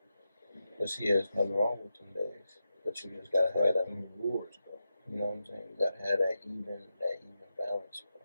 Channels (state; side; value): inverted; both; correlation -0.90